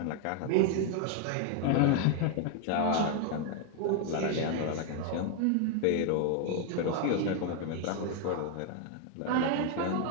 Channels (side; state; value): both; different; correlation 0.01